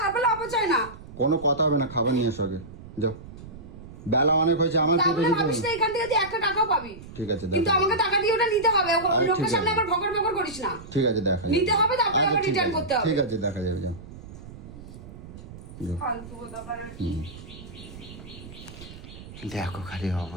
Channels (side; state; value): right; noise; rumble, 15 dB below the sound